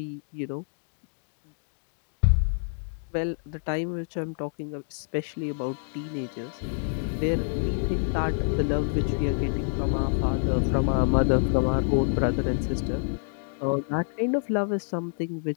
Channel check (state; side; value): silent; right; digital silence